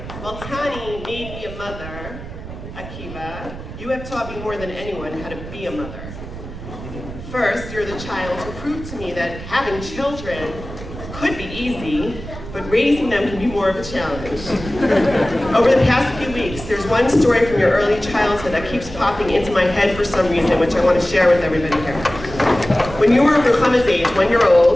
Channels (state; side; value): noise; right; rumble, 12 dB below the sound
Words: Well, Tani made me a mother, Akiva. You have taught me more than anyone how to be a mother. First, you're the child who proved to me that having children could be easy, but raising them can be more of a challenge. Over the past few weeks, there's one story from your early childhood that keeps popping into my head for some reason, which I want to share with everybody here. When you were Ruchama's age, 1 year